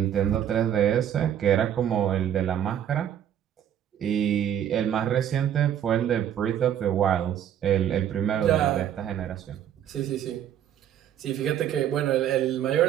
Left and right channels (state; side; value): quieter; left; 10.0 dB